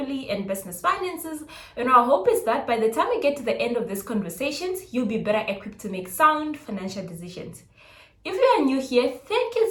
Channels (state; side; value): identical; both; correlation 1.00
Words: and business finances. And our hope is that by the time we get to the end of these conversations, you'll be better equipped to make sound financial decisions. If you are new here, thank you